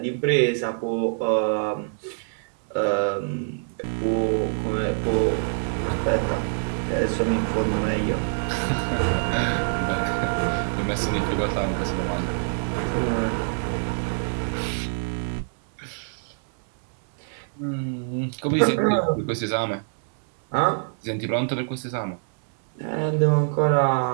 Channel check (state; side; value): silent; left; 62 dB below the other